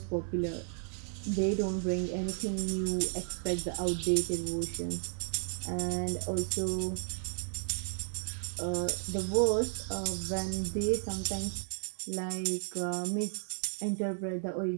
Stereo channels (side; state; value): left; silent; 55 dB below the other